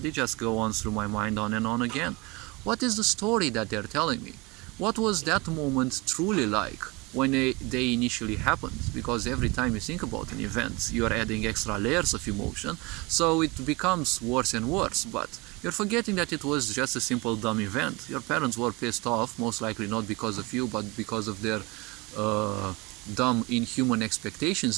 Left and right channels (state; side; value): quieter; left; 25.4 dB